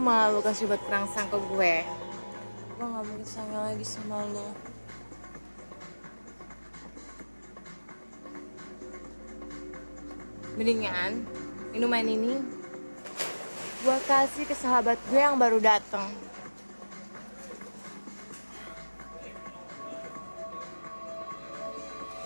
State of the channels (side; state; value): both; inverted; correlation -1.00